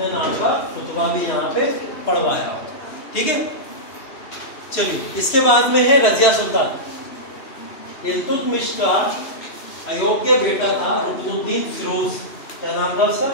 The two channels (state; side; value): late; right; 3.0 ms